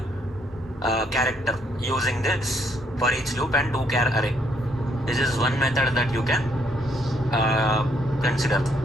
character using this for each loop and 2 char array. This is one method that you can consider.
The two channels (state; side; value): normal; both; correlation 0.71